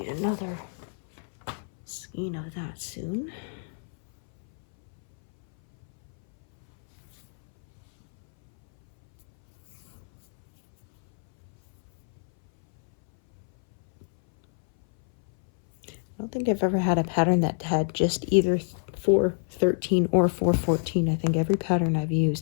Another skein of that soon. I don't think I've ever had a pattern that had just either 413 or 414. I think every pattern I've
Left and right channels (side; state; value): right; silent; 60 dB below the other